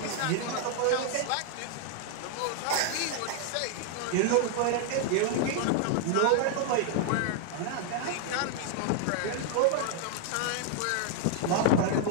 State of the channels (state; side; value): different; both; correlation 0.00